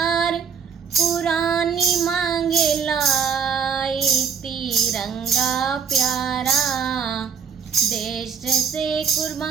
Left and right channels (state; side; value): quieter; left; 6.5 dB